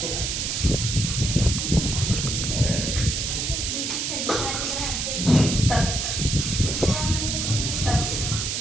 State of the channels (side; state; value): right; noise; hiss, 1 dB below the sound